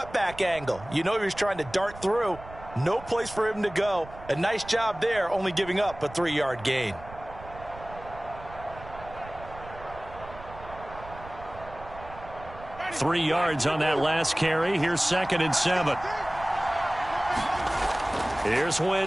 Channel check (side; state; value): right; noise; rumble, 16 dB below the sound